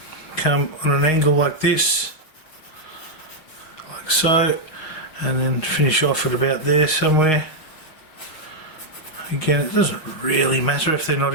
come on an angle like this, like so, and then finish off at about there somewhere. Again, it doesn't really matter if they're not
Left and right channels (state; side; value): late; right; 6.4 ms